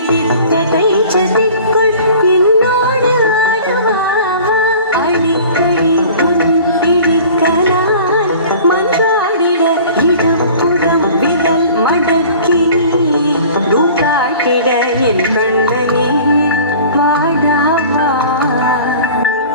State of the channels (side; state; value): both; inverted; correlation -0.45